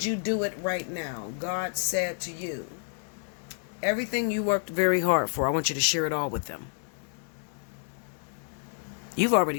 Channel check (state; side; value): silent; right; digital silence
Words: you do it right now? God said to you, everything you worked very hard for, I want you to share it all with them. You've already